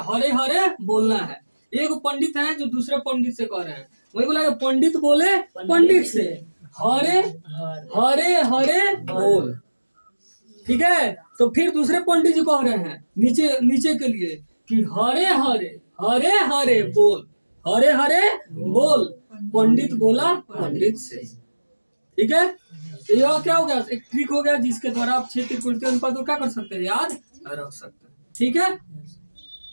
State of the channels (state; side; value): inverted; both; correlation -1.00